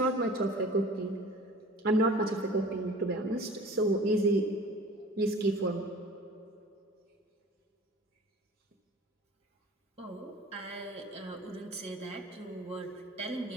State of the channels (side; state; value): both; normal; correlation 0.43